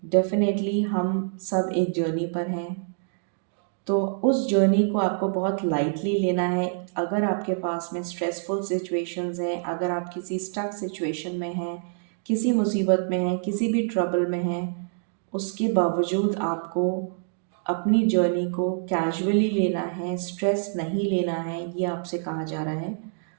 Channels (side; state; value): left; silent; digital silence